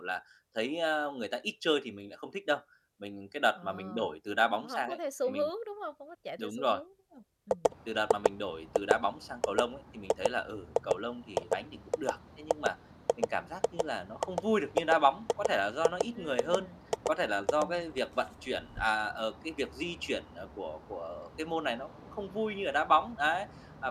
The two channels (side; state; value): both; identical; correlation 1.00